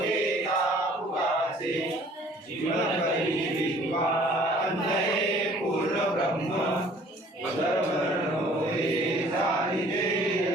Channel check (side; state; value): both; normal; correlation 0.54